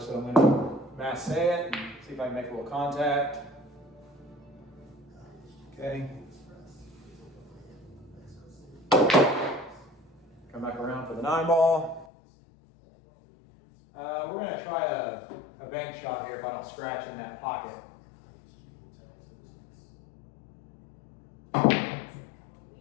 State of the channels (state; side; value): drops out; right; at 12.1 s